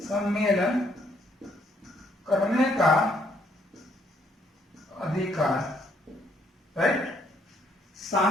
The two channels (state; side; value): normal; both; correlation 0.69